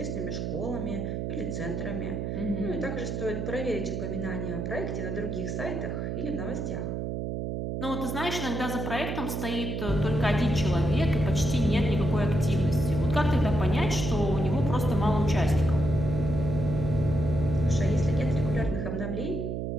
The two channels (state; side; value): noise; right; hum, 3 dB below the sound